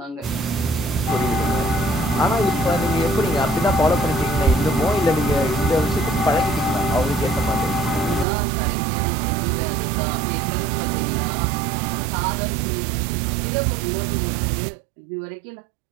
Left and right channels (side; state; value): left; drops out; at 8.2 s